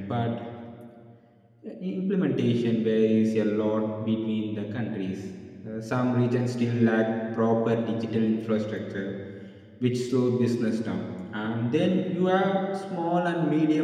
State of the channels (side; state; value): both; identical; correlation 1.00